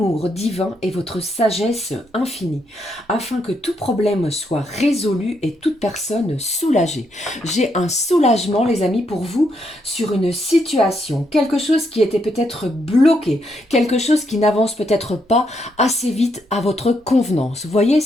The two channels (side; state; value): both; normal; correlation 0.77